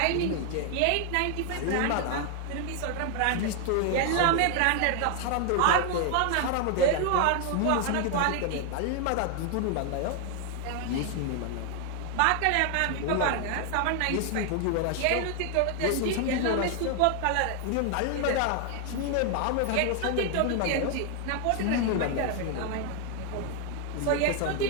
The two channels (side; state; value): both; different; correlation 0.00